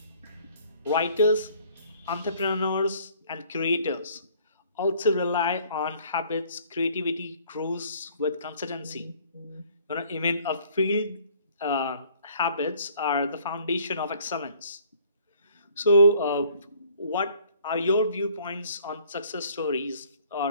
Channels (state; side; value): inverted; both; correlation -0.57